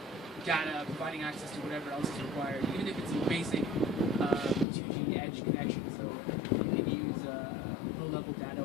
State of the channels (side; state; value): right; drops out; at 4.7 s